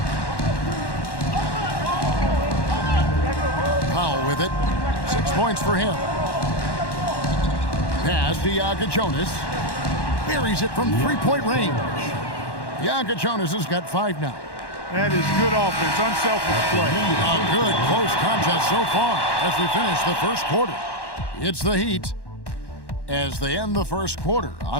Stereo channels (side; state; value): right; late; 1.1 ms